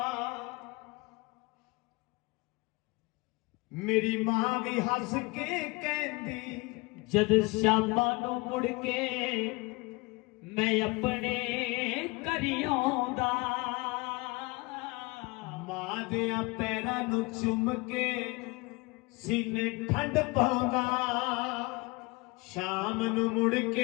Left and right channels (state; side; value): quieter; right; 25.2 dB